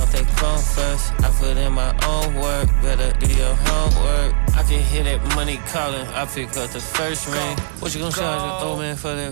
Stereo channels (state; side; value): silent; left; digital silence